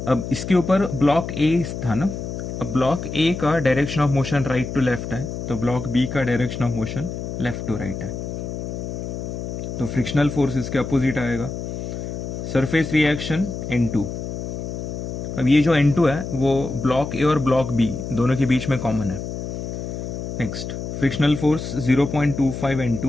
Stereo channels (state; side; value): noise; left; hum, 6 dB below the sound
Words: अब इसके ऊपर ब्लॉक ए था ना, अब ब्लॉक ए का direction of motion right to left है, तो ब्लॉक बी का direction of motion left to right है, तो फ्रिक्शनल फोर्स इसके अपोजिट आएगा। Surface reaction N2। अब ये जो N2 है वो ब्लॉक ए और ब्लॉक बी दोनों के बीच में कॉमन है। Next, frictional force 0.25